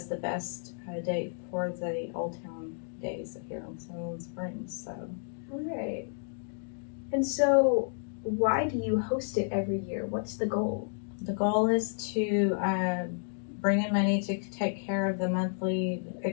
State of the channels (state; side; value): silent; right; digital silence